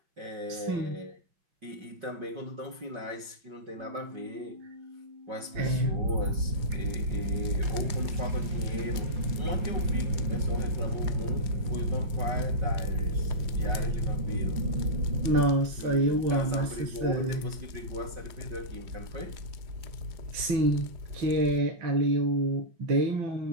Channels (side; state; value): left; late; 5.3 ms